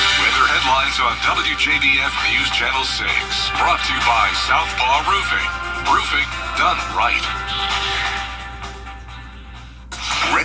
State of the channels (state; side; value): identical; both; correlation 1.00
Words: Weather headlines on WJBF News Channel 6. Brought to you by Southpaw Roofing. Roofing done right.